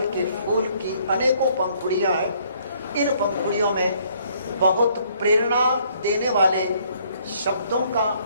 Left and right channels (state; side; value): inverted; both; correlation -0.64